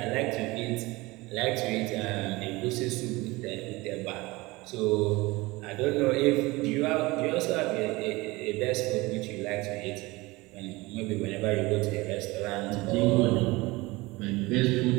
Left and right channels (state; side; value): quieter; left; 21.9 dB